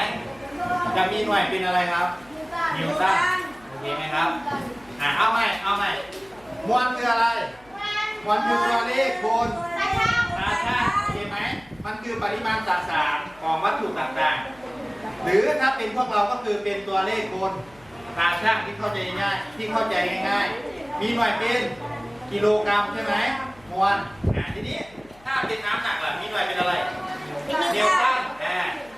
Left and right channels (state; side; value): noise; left; hum, 27 dB below the sound